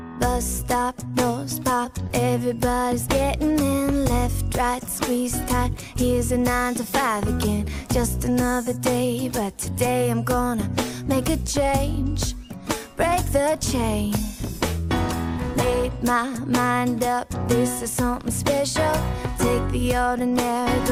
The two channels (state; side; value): identical; both; correlation 1.00